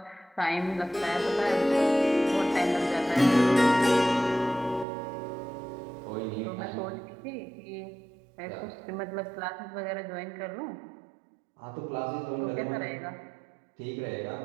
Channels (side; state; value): left; drops out; at 4.9 s